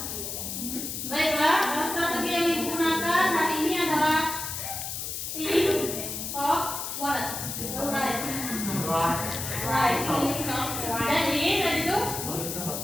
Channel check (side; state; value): left; noise; hiss, 5 dB below the sound